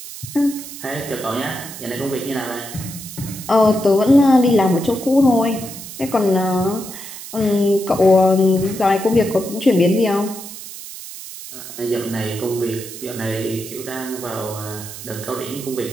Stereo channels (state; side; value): noise; right; hiss, 12 dB below the sound